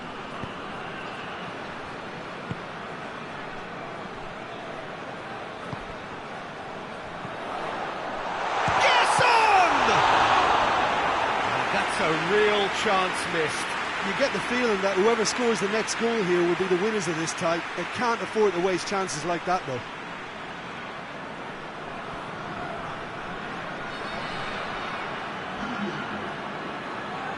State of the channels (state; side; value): identical; both; correlation 1.00